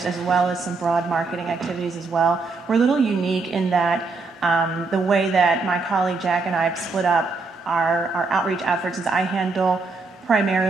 as well as some broad marketing activities as well. We're a little unique in that the way that my colleague Jack and I have split up our outreach efforts is I handle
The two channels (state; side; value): quieter; left; 3.9 dB